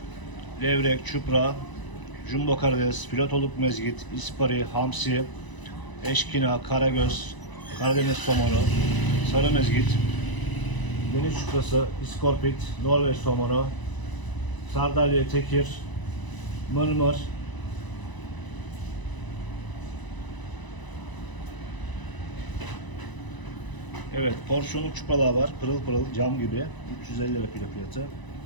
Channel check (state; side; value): late; right; 1.0 ms